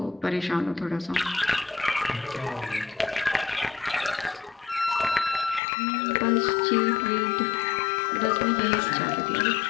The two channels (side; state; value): right; drops out; at 5.6 s